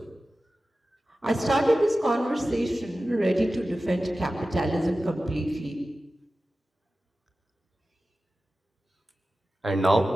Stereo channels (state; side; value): normal; both; correlation 0.95